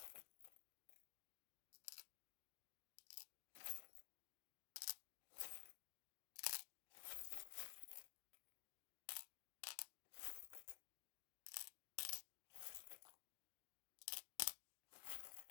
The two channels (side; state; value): right; silent; digital silence